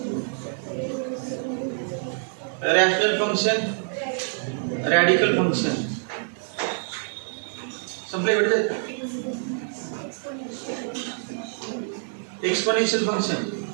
rational function, radical function. संपले बेटे. एक्सपोनेन्शियल फंक्शन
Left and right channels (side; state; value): left; silent; digital silence